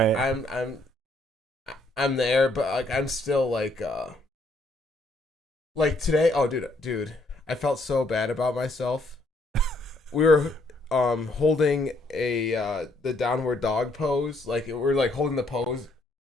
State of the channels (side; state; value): both; normal; correlation 0.70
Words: I'm there, but like I'm still like today. Oh, dude, I felt so bad about myself. We were holding the downward dog pose. Like we're like holding the pose,